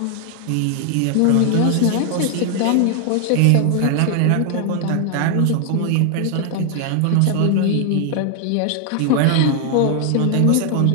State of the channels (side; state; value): both; different; correlation 0.00